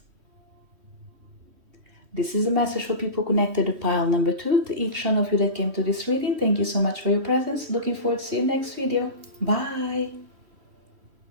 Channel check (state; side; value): late; left; 3.1 ms